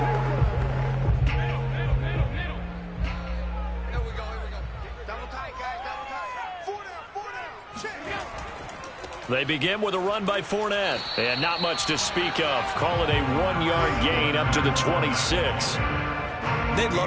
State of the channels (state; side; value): identical; both; correlation 1.00